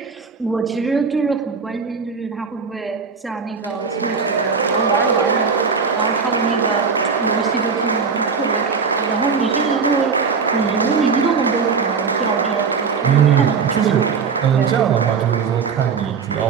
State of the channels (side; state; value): left; quieter; 5.6 dB